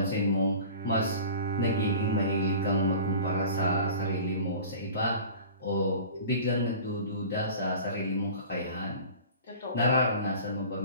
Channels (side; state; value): both; inverted; correlation -0.40